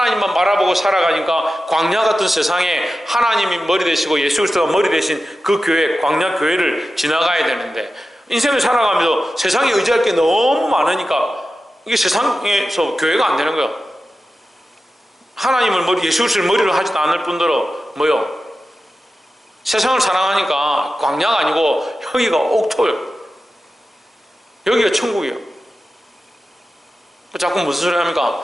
바라보고 살아가니까 광야 같은 세상에 하나님이 머리 되시고 예수 그리스도가 머리 되신 그 교회, 광야 교회를 지나가야 되는데, 인생을 살아가면서 세상에 의지할 게 너무 많으니까 이게 세상에서 교회가 안 되는 거예요. 하나님을 예수 그리스도를 머리로 하지도 않을 뿐더러 세상을 사랑하니까 광야가 아니고 여기가 옥토예요. 여기가 천국이에요. 자꾸 무슨 소리 합니까?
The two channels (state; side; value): normal; both; correlation 0.93